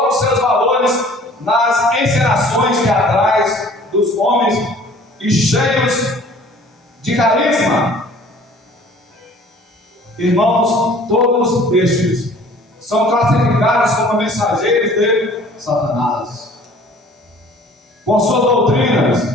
seus valores nas encenações teatrais dos homens e cheios de carisma. Irmãos, todos estes são classificados como mensageiros de Satanás, com suas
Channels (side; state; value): both; normal; correlation 0.51